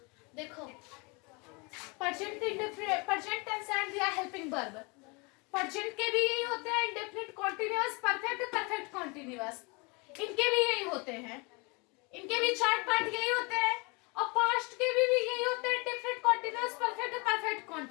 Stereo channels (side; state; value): right; quieter; 29.4 dB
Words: देखो प्रेजेंट टेंस एंड दिया हेल्पिंग वर्ब। प्रेजेंट के भी यही होते हैं, indefinite continuous, perfect, perfect continuous, इनके भी यही होते हैं। इनके भी 4 पार्ट यही होते हैं। और पास्ट के भी यही होते हैं, indefinite continuous, perfect, perfect